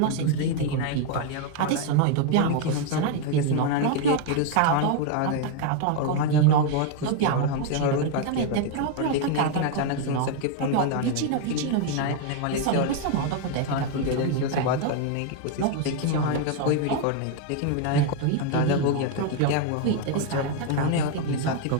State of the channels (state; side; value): different; both; correlation 0.01